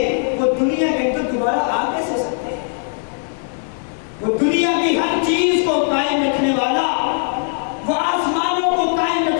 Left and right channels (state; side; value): silent; right; 60 dB below the other